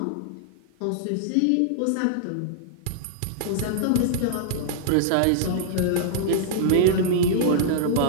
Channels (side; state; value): both; different; correlation -0.01